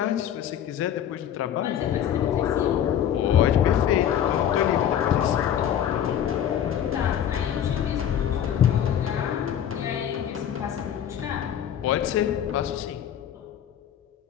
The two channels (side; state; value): right; quieter; 9.8 dB